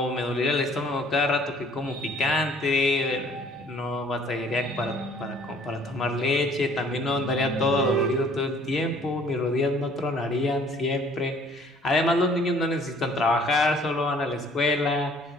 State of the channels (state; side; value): normal; both; correlation 0.57